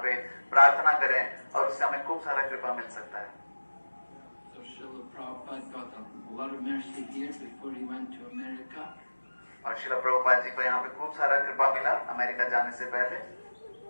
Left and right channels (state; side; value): inverted; both; correlation -1.00